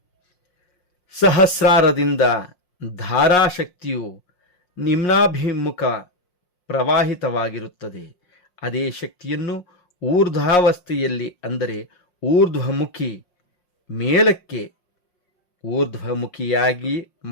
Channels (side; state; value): right; late; 5.6 ms